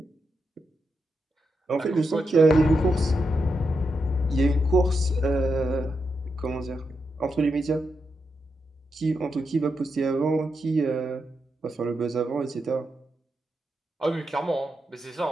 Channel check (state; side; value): normal; both; correlation 0.85